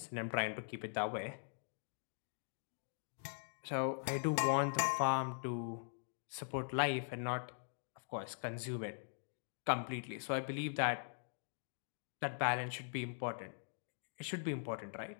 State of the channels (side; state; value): right; silent; digital silence